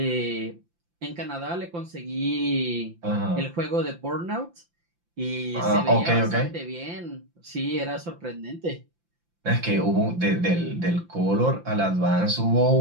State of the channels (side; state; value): left; late; 5.8 ms